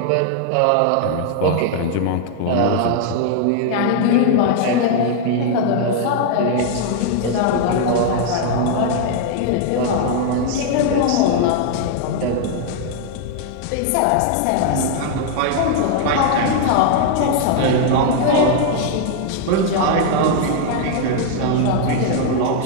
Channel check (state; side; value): different; both; correlation 0.00